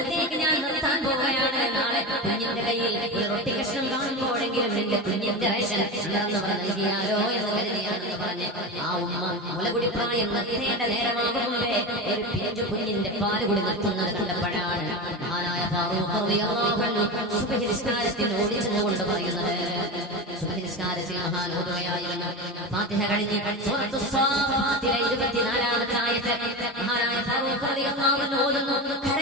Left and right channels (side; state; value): both; normal; correlation 0.22